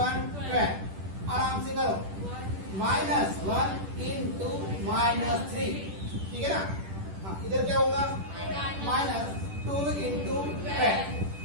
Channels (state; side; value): late; left; 10 ms